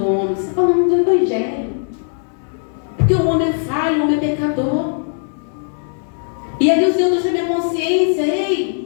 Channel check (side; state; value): right; silent; digital silence